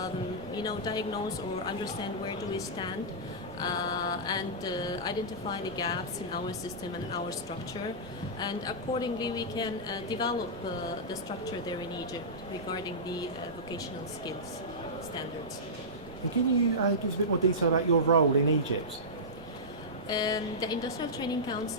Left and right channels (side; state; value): both; normal; correlation -0.15